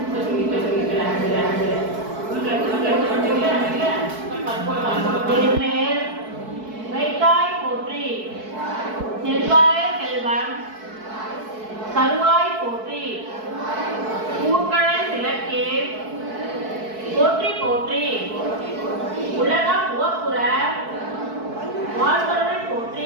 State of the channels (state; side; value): late; left; 4.6 ms